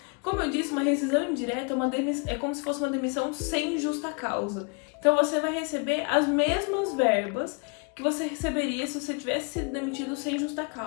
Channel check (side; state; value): right; quieter; 34.5 dB